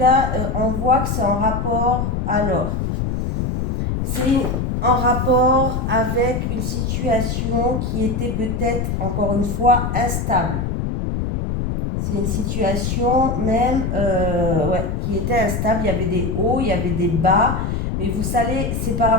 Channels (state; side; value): noise; left; rumble, 1 dB below the sound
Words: on voit que c'est en rapport, alors, c'est en rapport avec une situation qui était peut-être, encore une fois, instable. C'est une situation même qui était instable. Il y avait des hauts, il y avait des bas. Mais vous savez, c'est par